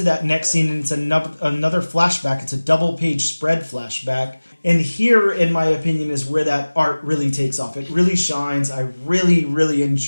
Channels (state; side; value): inverted; both; correlation -1.00